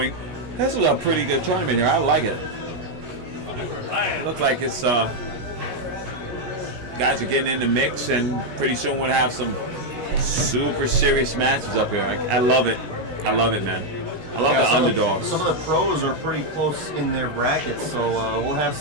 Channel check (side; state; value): left; late; 17 ms